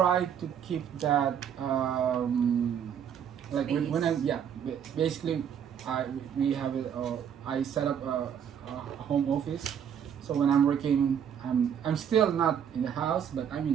to keep that like when I basically we have it. I set up a home office. So when I'm working, I'm still not in the house, but I'm in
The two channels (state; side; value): quieter; left; 8.5 dB